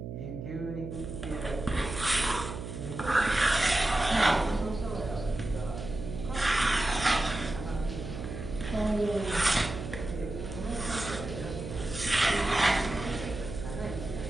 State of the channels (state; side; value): noise; right; hum, 8 dB below the sound